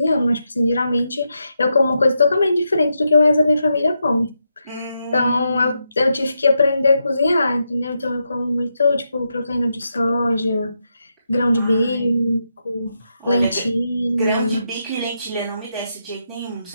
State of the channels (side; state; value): both; inverted; correlation -0.84